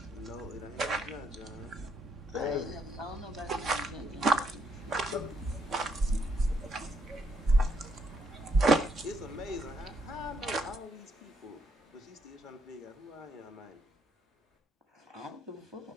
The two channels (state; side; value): normal; both; correlation 0.74